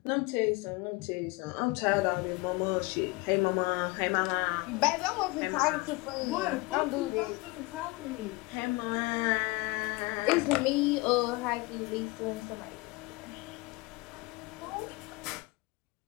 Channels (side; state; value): right; quieter; 23.8 dB